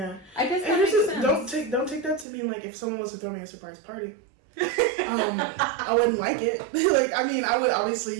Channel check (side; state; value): left; drops out; at 2.2 s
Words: I guess that And makes sense. don't take that to mean like if someone was to throw me a surprise party. I wouldn't like it. Like, I mean, I would obviously,